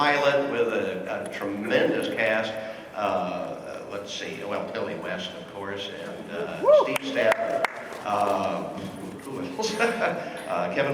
with a tremendous cast. Let's see. Well, Billy West, of course, and Steve Stafford. Who else? Kevin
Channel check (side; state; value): both; identical; correlation 1.00